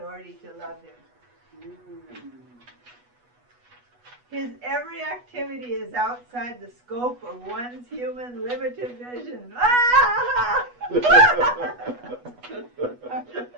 to love him. His every activity is outside the scope of one's human limited vision.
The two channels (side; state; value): left; late; 8.2 ms